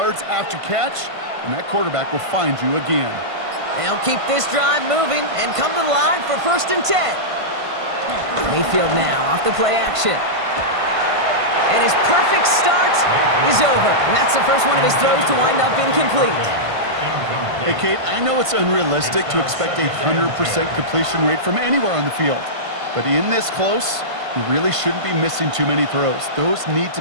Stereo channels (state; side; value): late; left; 1.5 ms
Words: after catch, and that quarterback will find you again. They'll keep this drive moving and come to the line for 1st and 10. Mayfield now off the play action. And his perfect start is over. And that's the first one of his throws to wind up incomplete. Hey, Kate, I know it's unrealistic to expect a 100% completion rate from anywhere on the field. But in this close, you really shouldn't be missing too many throws. Those need to